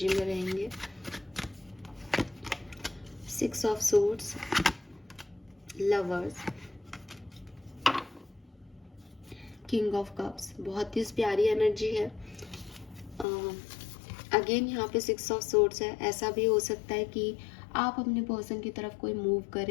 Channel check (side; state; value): right; drops out; at 13.2 s